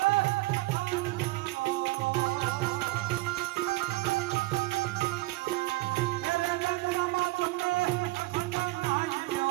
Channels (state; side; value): quieter; left; 20.7 dB